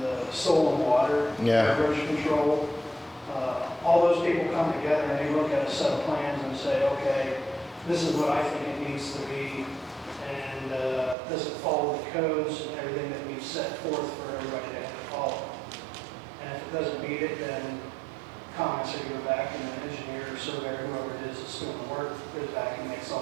soil and water, erosion control. All those people come together and they look at a set of plans and say, okay, this is what I think it needs to be, and does it follow the codes and everything that we've set forth for everybody to have to follow. And if it doesn't meet it, then comments are going back, and the engineer or surveyor, whoever it is that's doing the work, goes back and makes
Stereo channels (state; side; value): drops out; left; at 11.2 s